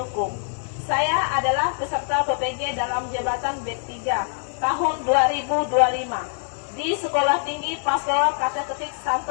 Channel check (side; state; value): right; silent; digital silence